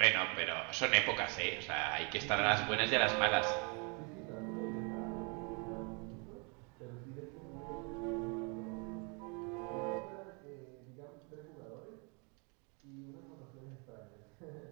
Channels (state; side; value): quieter; left; 33.9 dB